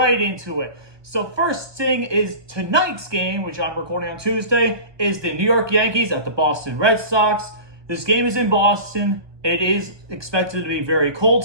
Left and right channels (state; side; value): late; left; 1.2 ms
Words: into it. So first thing is tonight's game, which I'm recording on Tuesday, is the New York Yankees at the Boston Red Sox. This game is in Boston. It is expected to be very cold